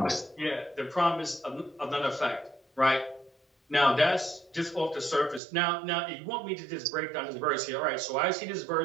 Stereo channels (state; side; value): drops out; left; at 5.4 s